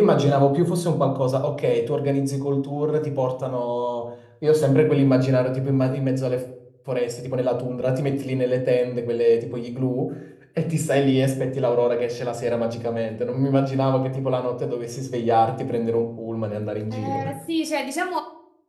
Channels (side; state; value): both; identical; correlation 1.00